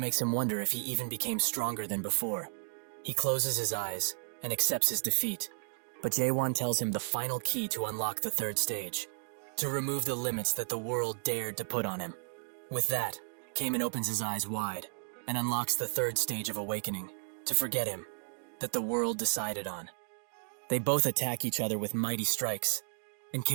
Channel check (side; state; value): left; silent; digital silence